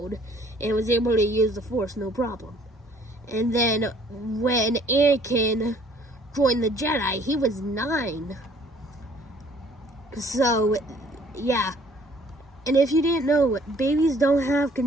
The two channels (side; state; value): both; normal; correlation 0.58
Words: and was able to use the Force no problem. And then when Anakin joined the Jedi, he was 9. So, yeah. And if you didn't know, babies don't have